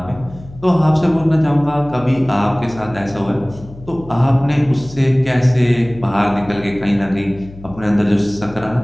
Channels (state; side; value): noise; left; hum, 18 dB below the sound